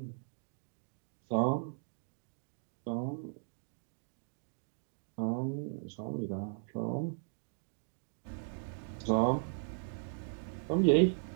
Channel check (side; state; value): left; silent; digital silence